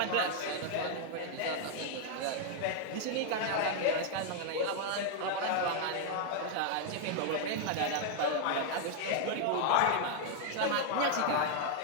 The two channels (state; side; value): different; both; correlation 0.00